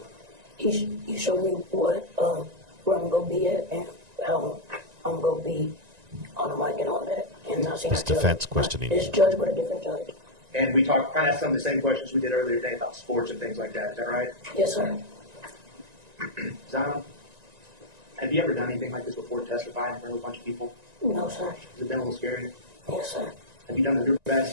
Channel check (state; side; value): late; left; 1.9 ms